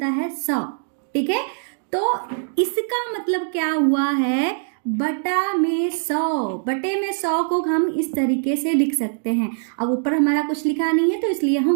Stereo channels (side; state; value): left; silent; digital silence